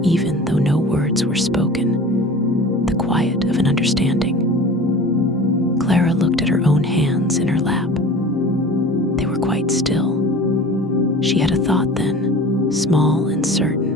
even though no words were spoken, the quiet of an understanding. Clara looked at her own hands in her lap. They were quite still. She had a thought then, small and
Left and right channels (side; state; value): both; normal; correlation 0.39